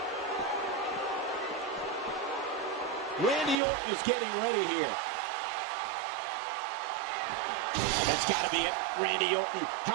Randy Orton is getting ready here. That's got to be it. Randy Orton.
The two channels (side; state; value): left; drops out; at 3.6 s